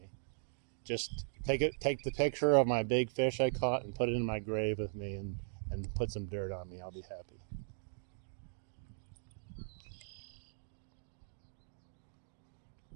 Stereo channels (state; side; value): silent; left; digital silence